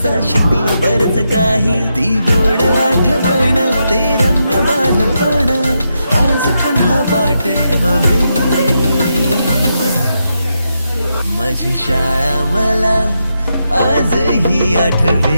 शिकलो बरच काही ती गोड आठवण ते रम्य बालपण आज पुन्हा वाटे हवे माझी शाळा मला आजही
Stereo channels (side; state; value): both; inverted; correlation -0.84